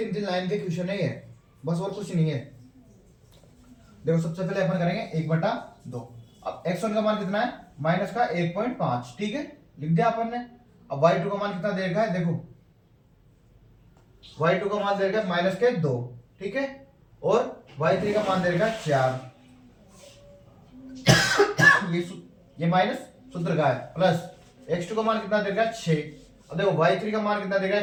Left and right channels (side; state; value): both; identical; correlation 1.00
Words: लाइन के क्वेश्चन है ये, बस और कुछ नहीं है। देखो सबसे पहले अपन करेंगे 1/2। अब x1 का मान कितना है, माइनस का 1.5, ठीक है, लिख दिया अपन ने। अब y2 का मान कितना दे रखा है, देखो y2 का मान दे रखा है माइनस के 2, ठीक है, और y3 का मान दे रखा है 4। ये माइनस सूत्र का है, प्लस x2 का मान कितना दे रखा है 6। अब देखो y3 का मान कितना दे रखा